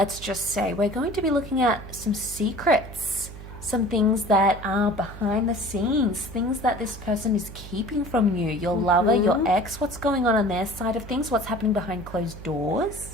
just say. We're going to be looking at some secrets, some things that are behind the scenes, things that this person is keeping from you, your lover, your ex, what's going on their side of things, what's happening behind closed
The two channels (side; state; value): right; noise; hum, 13 dB below the sound